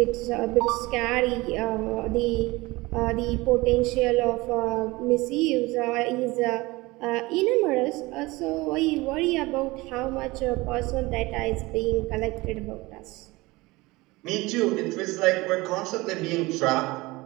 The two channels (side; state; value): left; quieter; 21.7 dB